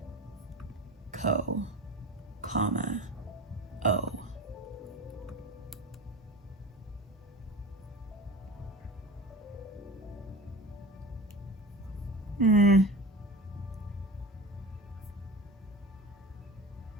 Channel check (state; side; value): normal; both; correlation 0.32